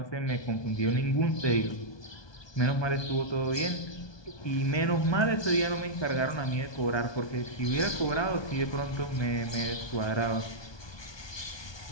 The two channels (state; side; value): late; right; 1.2 ms